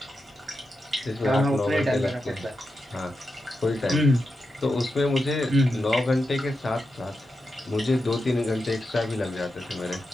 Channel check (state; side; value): normal; both; correlation 0.88